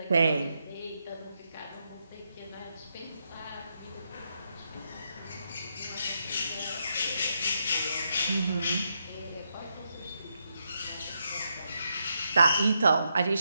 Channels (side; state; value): both; inverted; correlation -0.82